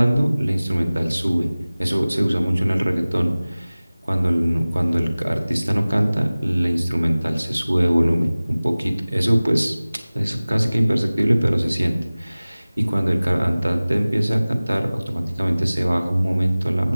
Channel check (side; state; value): both; inverted; correlation -0.99